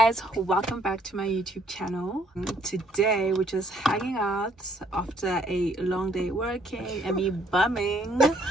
welcome back to my YouTube channel. Today we're just hanging out after a long day working and me bumming.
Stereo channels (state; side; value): normal; both; correlation 0.66